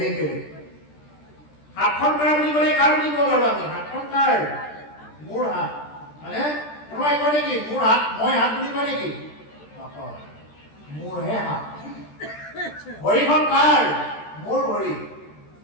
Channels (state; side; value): late; right; 13 ms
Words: বেলেগ হাতখন কাৰ বুলি ক'লে কাৰ বুলি ক'ব পাৰোঁ আমি হাতখন কাৰ মোৰ হাত মানে কোনোবাই কয় নেকি মোৰ হাত মই হাত বুলি কয় নেকি নকয় মোৰহে হাত ভৰিখন কাৰ মোৰ ভৰি